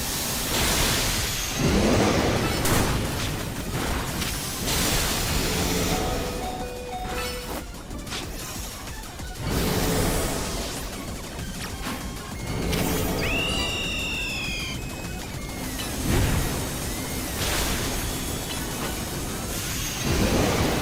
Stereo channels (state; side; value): identical; both; correlation 1.00